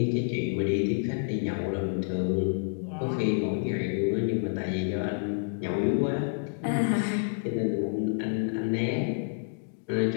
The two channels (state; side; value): silent; right; digital silence